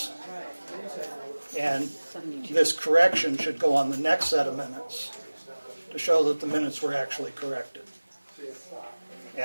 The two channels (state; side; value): inverted; both; correlation -1.00